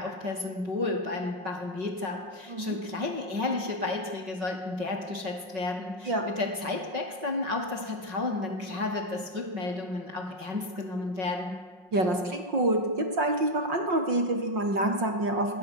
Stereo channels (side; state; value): left; late; 5.4 ms